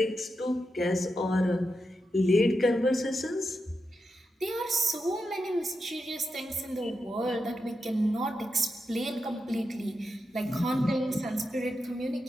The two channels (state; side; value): normal; both; correlation 0.87